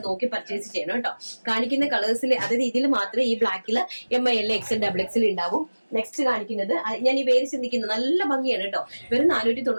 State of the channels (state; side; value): inverted; both; correlation -1.00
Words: നോക്കി പർച്ചേസ് ചെയ്യണം കേട്ടോ. കാണിക്കുന്ന കളേഴ്സിൽ അതായത് ഇതിൽ മാത്രമേ ഈ ബ്ലാക്കിൽ ML, XL, XXL ഉണ്ടാവും. നെക്സ്റ്റ് കാണിക്കുന്നത് ഞാൻ ഈ വേര് ചിന്തിക്കുന്നത് നല്ല ഭംഗിയാണ് കേട്ടോ. വെറും